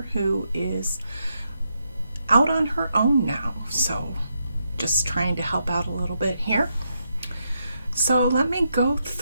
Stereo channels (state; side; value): inverted; both; correlation -0.81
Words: who is out on her own now. So just trying to help out a little bit here. So let me go